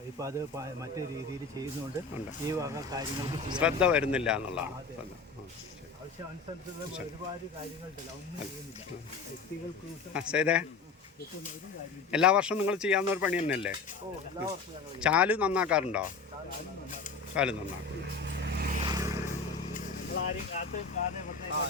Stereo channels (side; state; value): right; quieter; 4.7 dB